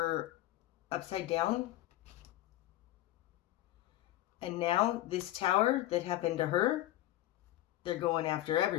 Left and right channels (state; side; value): quieter; right; 15.1 dB